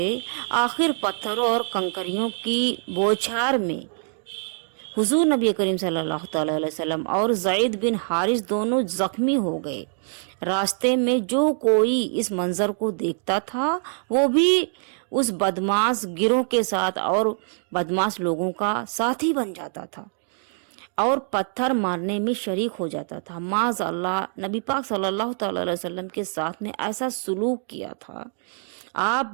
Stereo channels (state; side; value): silent; left; 62 dB below the other